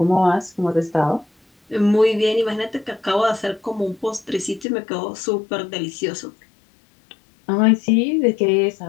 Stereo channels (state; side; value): drops out; right; at 4.7 s